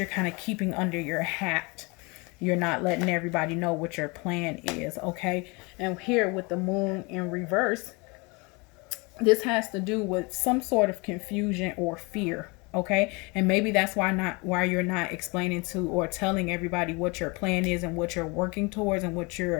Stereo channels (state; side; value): quieter; right; 27.9 dB